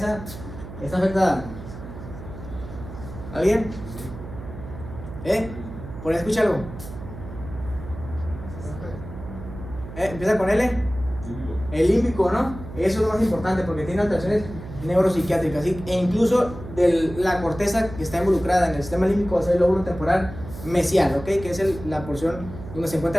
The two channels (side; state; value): right; noise; hum, 12 dB below the sound